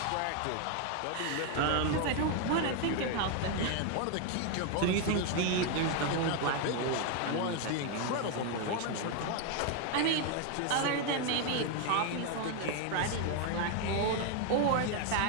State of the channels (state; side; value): different; both; correlation 0.01